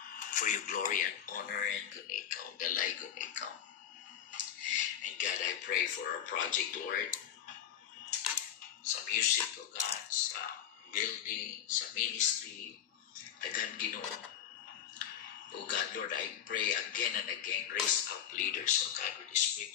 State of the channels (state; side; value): quieter; right; 9.5 dB